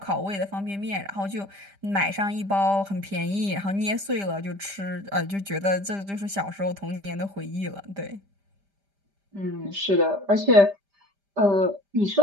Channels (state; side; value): late; left; 5.0 ms